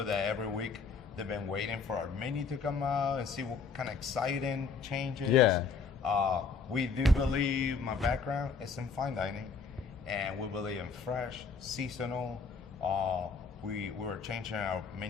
that every week they've been waiting for our menu to come out and see what kind of exciting changes. Yeah. We do believe, my background is in fine dining, and we believe in fresh, seasonal. We were changing our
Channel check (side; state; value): right; quieter; 5.2 dB